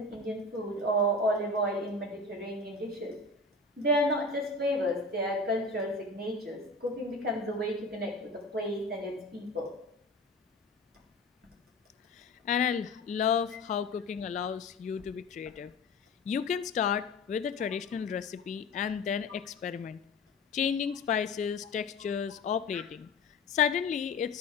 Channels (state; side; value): quieter; right; 3.1 dB